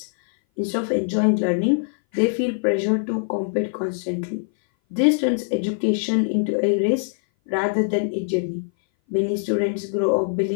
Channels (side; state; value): right; silent; 59 dB below the other